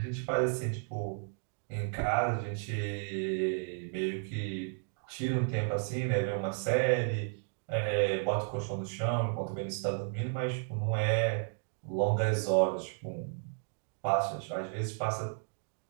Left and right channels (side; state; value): left; silent; 56 dB below the other